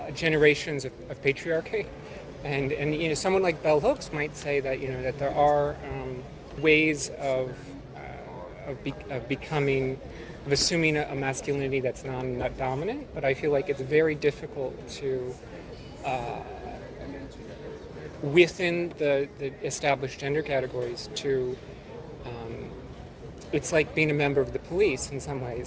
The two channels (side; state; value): both; identical; correlation 1.00